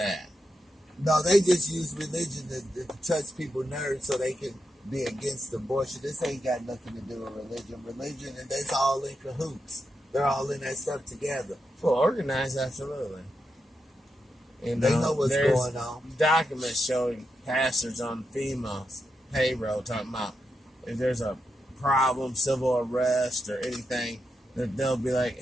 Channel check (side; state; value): both; normal; correlation 0.86